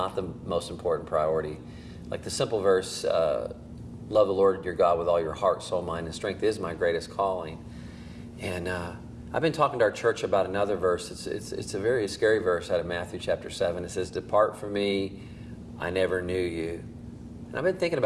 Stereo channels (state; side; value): identical; both; correlation 1.00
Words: the most important priority. Like the simple verse, love the Lord your God with all your heart, soul, mind, and strength is my greatest calling. And I've been talking to our church about another verse. It's a very scary verse out of Matthew chapter 7. It says, depart from me, I never knew you. And I've been thinking